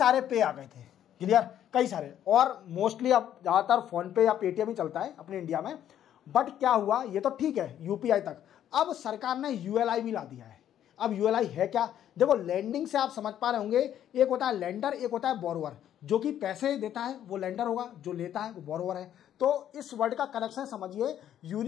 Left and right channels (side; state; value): right; quieter; 10.7 dB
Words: पे आ गए थे। क्लियर? कई सारे, और मोस्टली अब ज़्यादातर फोन पे या पेटीएम ही चलता है अपने इंडिया में। बट क्या हुआ, ये तो ठीक है यूपीआई तक, अब सरकार ने ULI भी ला दिया है। अब ULI है क्या? देखो, लैंडिंग से आप समझ पा रहे होंगे, एक होता है लेंडर, एक होता है बोरोवर। जो कि पैसे देता है वो लेंडर होगा, जो लेता है वो बोरोवर है। तो इस वर्ड का कनेक्शन समझिए,